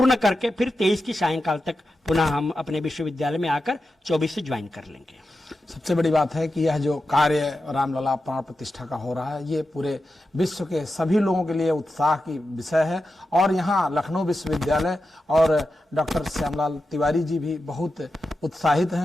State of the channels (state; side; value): normal; both; correlation 0.90